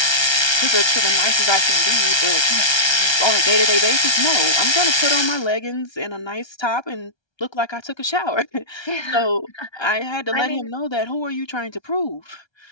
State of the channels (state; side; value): late; right; 1.3 ms